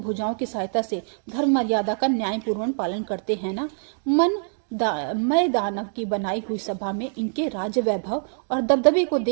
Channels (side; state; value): left; silent; digital silence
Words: भुजाओं की सहायता से धर्म मर्यादा का न्यायपूर्वक पालन करते हैं ना। मैं दानव की बनाई हुई सभा में इनके राज्य वैभव और दबदबे को